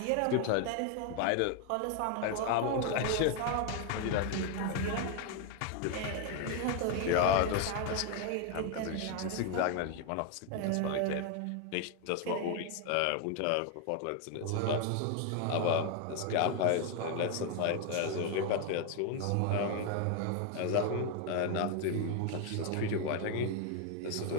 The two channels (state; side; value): different; both; correlation 0.01